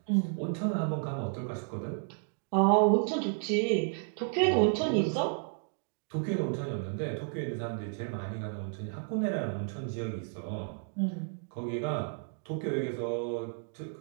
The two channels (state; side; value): silent; left; 56 dB below the other